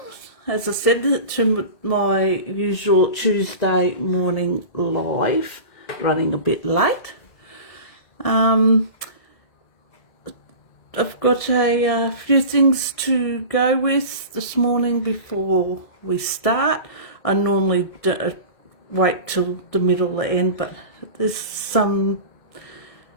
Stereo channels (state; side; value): late; right; 1.7 ms